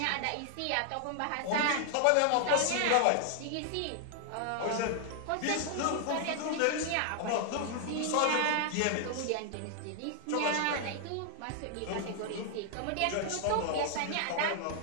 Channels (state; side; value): different; both; correlation 0.00